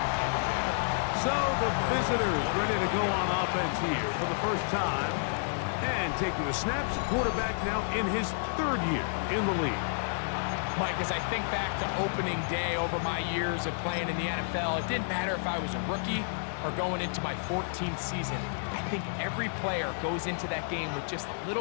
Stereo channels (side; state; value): right; silent; digital silence